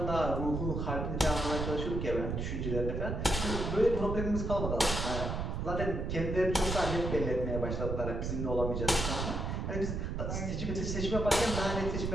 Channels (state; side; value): noise; right; rumble, 2 dB below the sound